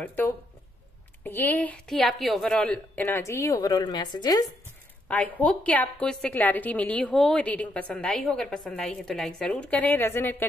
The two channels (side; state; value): both; normal; correlation 0.76